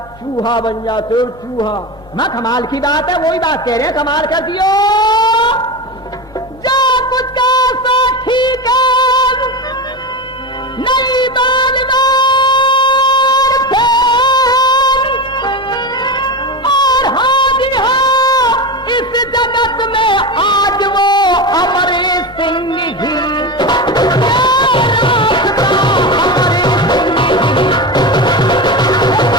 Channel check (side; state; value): both; normal; correlation 0.22